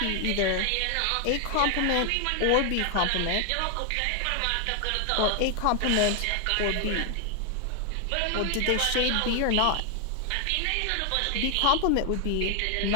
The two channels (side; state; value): both; different; correlation 0.00